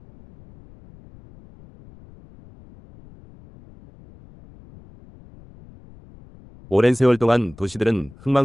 오랜 세월 동안 도시들은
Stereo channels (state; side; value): noise; left; rumble, 24 dB below the sound